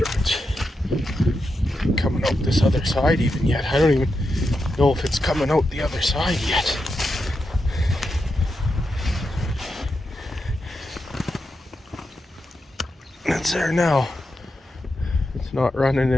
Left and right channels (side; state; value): both; normal; correlation 0.87